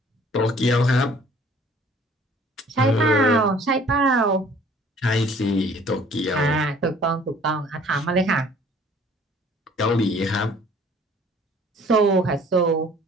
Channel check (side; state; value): both; normal; correlation 0.54